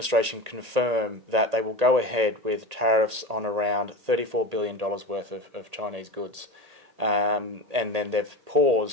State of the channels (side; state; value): left; late; 1.8 ms